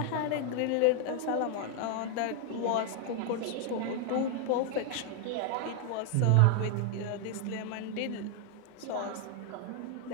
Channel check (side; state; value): both; different; correlation 0.00